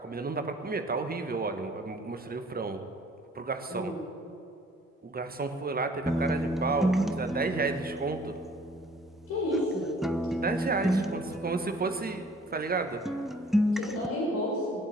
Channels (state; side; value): normal; both; correlation 0.55